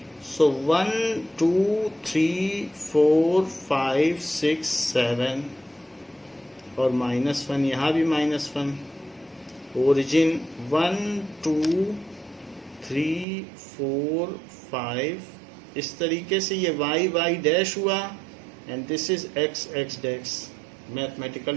सो 1 2 3 4 5 6 7 और -1, यहाँ भी -1। ओरिजिन 1 2 3 4 5, इस तरीके से ये y डैश हुआ and this is x dash. Mathematical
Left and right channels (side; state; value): left; drops out; at 13.2 s